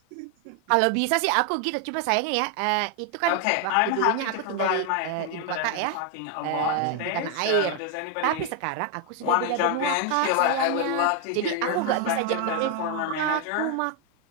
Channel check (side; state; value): both; different; correlation 0.01